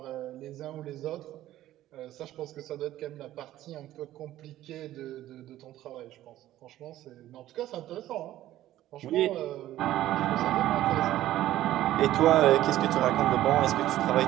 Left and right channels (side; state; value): left; quieter; 14.0 dB